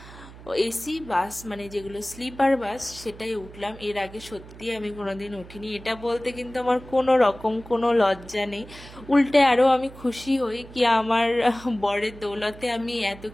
এসি বাস, মানে যেগুলো স্লিপার বাস, সেটাই উঠলাম। এর আগে সত্যি আমি কোনোদিন উঠিনি। এটা বলতে কিন্তু আমার কোনো রকম কোনো লজ্জা নেই, উল্টে আরও আমি খুশি হই কি আমার বরের দৌলতে আমি এত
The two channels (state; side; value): noise; right; hum, 18 dB below the sound